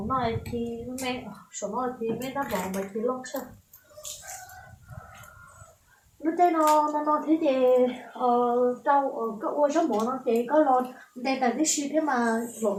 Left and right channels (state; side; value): identical; both; correlation 1.00